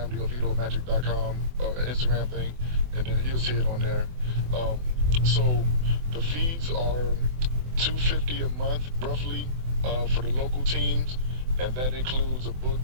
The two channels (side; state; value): left; late; 24 ms